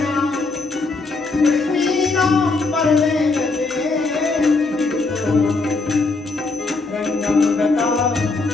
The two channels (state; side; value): quieter; right; 3.7 dB